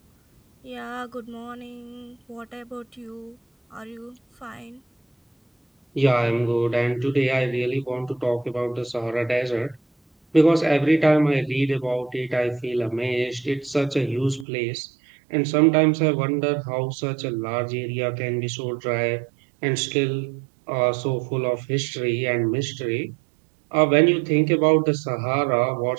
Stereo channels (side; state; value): left; drops out; at 14.5 s